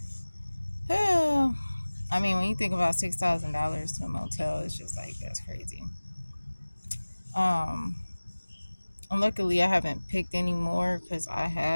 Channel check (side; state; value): both; inverted; correlation -1.00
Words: I mean, when you think about $6,000 to a motel, it's just like that's crazy. Um, and luckily, I haven't picked any more because I